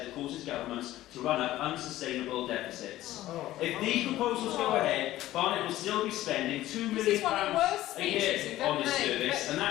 that causes governments to run up unsustainable deficits. If these proposals go ahead, Barnet will still be spending £2 million a year on this service, and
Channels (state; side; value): quieter; right; 15.1 dB